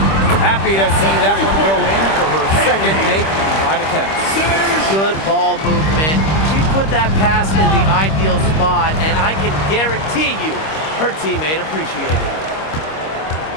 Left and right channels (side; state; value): right; late; 26 ms